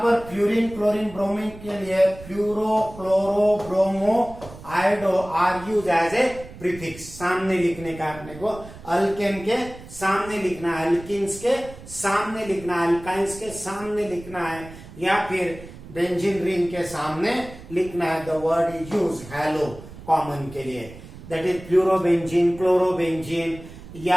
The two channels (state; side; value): noise; right; rumble, 16 dB below the sound